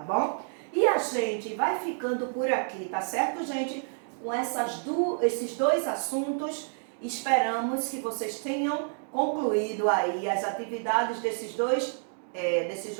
bom? E a gente vai ficando por aqui, tá certo, gente? Com esses dois assuntos, esperamos que vocês tenham concluído aí as atividades desses dois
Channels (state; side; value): silent; left; digital silence